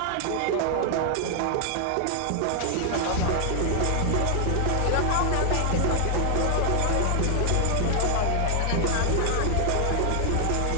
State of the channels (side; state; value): both; different; correlation 0.00